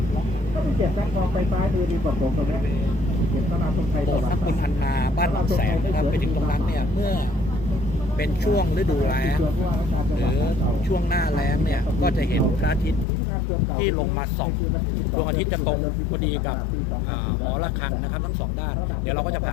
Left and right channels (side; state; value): right; drops out; at 13.1 s